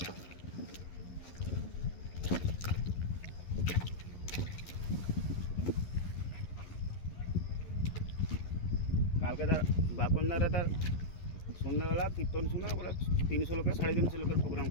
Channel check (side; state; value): right; late; 11 ms